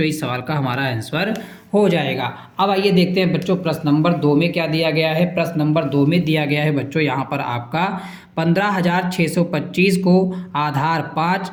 इस सवाल का हमारा आंसर हो जाएगा। अब आइए देखते हैं बच्चों प्रश्न नंबर 2 में क्या दिया गया है। प्रश्न नंबर 2 में दिया गया है बच्चों यहाँ पर आपका 15,625 को आधार 5,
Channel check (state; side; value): identical; both; correlation 1.00